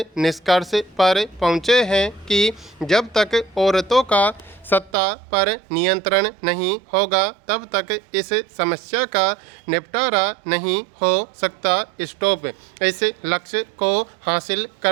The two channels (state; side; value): drops out; left; at 4.9 s